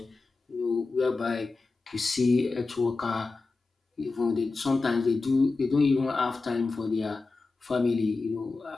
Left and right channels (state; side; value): quieter; right; 3.8 dB